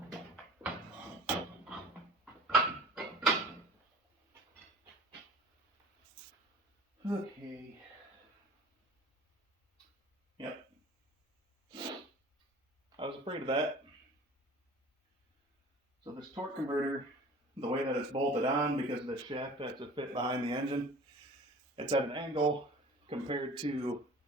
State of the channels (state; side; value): normal; both; correlation 0.43